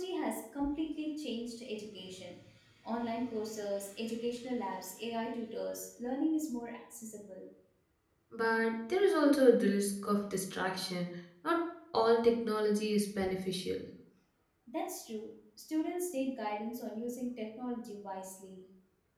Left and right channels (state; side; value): identical; both; correlation 1.00